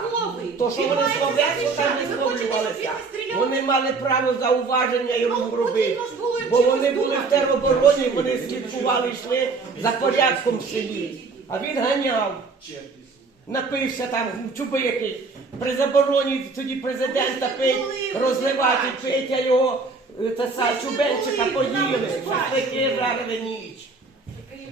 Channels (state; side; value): quieter; left; 4.2 dB